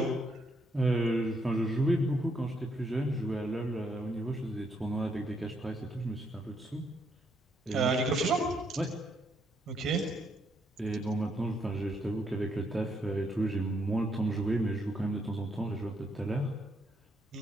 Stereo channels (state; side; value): normal; both; correlation 0.74